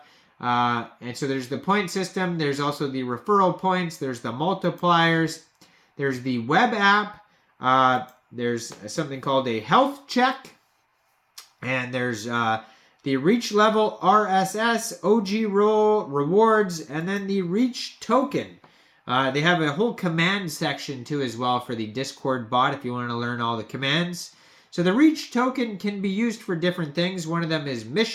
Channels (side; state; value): both; identical; correlation 1.00